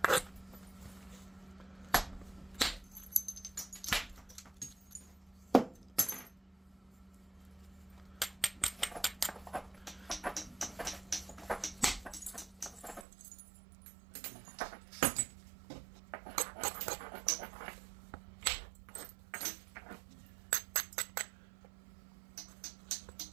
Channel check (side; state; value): left; drops out; at 13.1 s